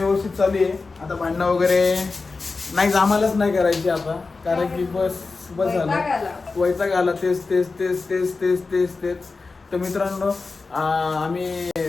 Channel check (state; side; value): quieter; right; 4.1 dB